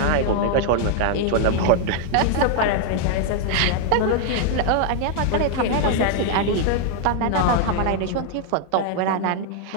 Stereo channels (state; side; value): different; both; correlation 0.00